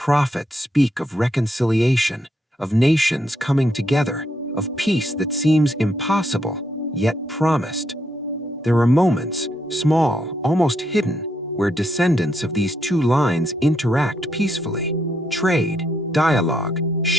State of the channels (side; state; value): both; normal; correlation 0.77